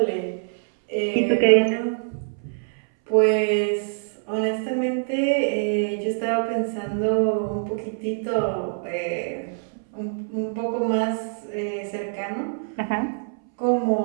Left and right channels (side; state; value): left; silent; 62 dB below the other